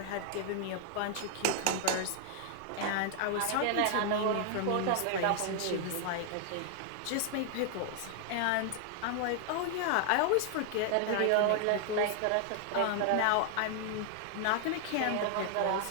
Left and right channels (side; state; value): both; different; correlation 0.00